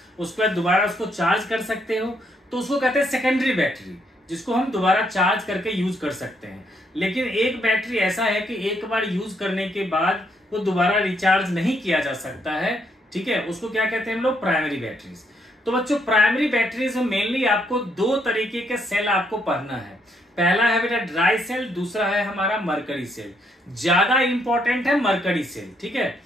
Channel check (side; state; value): both; normal; correlation 0.74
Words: उसके बाद दोबारा उसको चार्ज कर सकते हो, तो उसको कहते हैं सेकेंडरी बैटरी, जिसको हम दोबारा चार्ज करके यूज कर सकते हैं। लेकिन एक बैटरी ऐसा है कि एक बार यूज करने के बाद वो दोबारा रिचार्ज नहीं किया जा सकता है। ठीक है, उसको क्या कहते हैं हम लोग, प्राइमरी बैटरीज। तो बच्चों प्राइमरी बैटरीज में मेनली आपको 2 तरीके के सेल आपको पढ़ना है। पहला है बेटा ड्राई सेल, दूसरा है हमारा मरकरी सेल। ज्यादा इंपॉर्टेंट है मरकरी सेल। ठीक है,